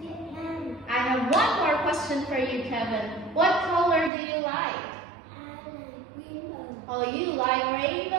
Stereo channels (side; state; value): left; drops out; at 4.1 s